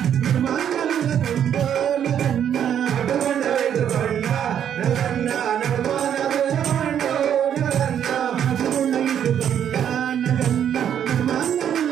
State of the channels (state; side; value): quieter; left; 9.3 dB